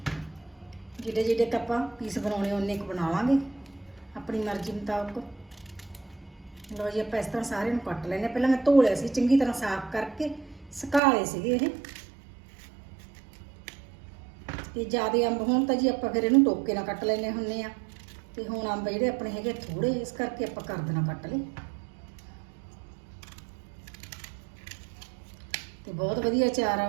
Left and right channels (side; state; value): left; drops out; at 11.0 s